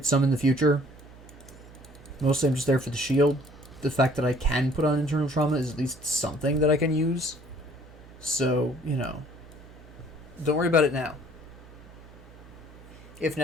some in the future. Mostly I'm just there for the shield. The fact that I can put on internal trauma is at least something that I can use. So, you know... Don't worry about it now. If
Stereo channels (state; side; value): noise; right; hum, 20 dB below the sound